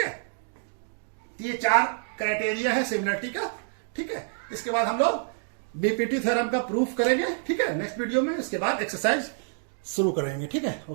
ये चार क्राइटेरिया है सिमिलरिटी का। ठीक है, इसके बाद हम लोग बीपीटी थ्योरम का प्रूफ करेंगे। ठीक है, नेक्स्ट वीडियो में, इसके बाद एक्सरसाइज शुरू करेंगे। ठीक है,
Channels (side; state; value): left; silent; digital silence